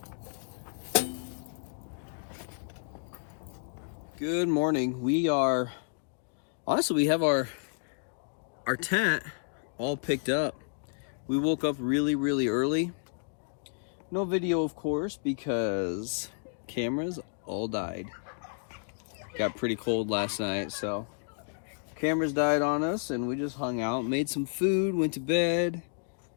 Good morning. We have our tent all picked up. We woke up really early. No video, of course, because cameras all died. Got pretty cold last night, so cameras died on us, and we just hung out, made some food, went to bed,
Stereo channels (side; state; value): right; silent; digital silence